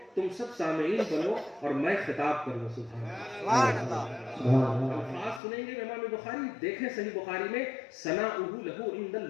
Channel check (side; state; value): right; drops out; at 5.4 s